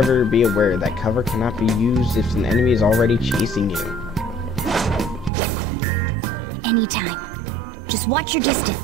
be aware that cover cannot be used if an enemy is already chasing you. Alright. Anytime. Just watch your distance.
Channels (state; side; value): drops out; left; at 5.3 s